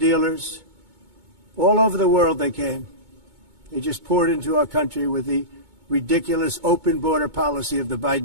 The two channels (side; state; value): left; late; 2.2 ms